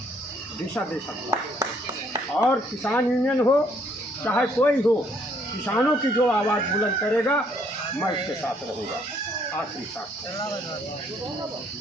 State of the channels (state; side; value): normal; both; correlation 0.66